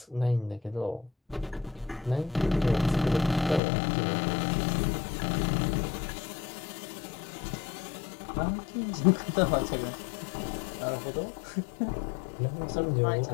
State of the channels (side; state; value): right; drops out; at 3.6 s